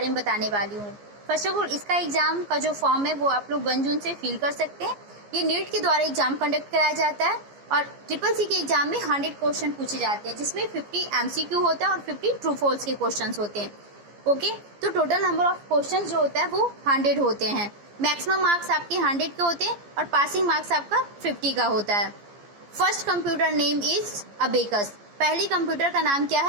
में बताने वाली हूँ। फर्स्ट ऑफ ऑल, इसका एग्जाम का जो फॉर्म है वो आप लोग 1 जून से फिल कर सकते हैं। ये नीट के द्वारा एग्जाम कंडक्ट कराया जाता है और CCC के एग्जाम में 100 क्वेश्चन पूछे जाते हैं, जिसमें 50 MCQ होता है और 50 ट्रू फॉल्स के क्वेश्चन होते हैं। ओके, तो टोटल नंबर ऑफ क्वेश्चन जो होता है वो 100 होते हैं। मैक्सिमम मार्क्स आपके 100 के होते हैं और पासिंग मार्क्स आपका 50 का होता है। First computer name is abacus. पहली कंप्यूटर का नाम क्या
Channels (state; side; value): late; left; 14 ms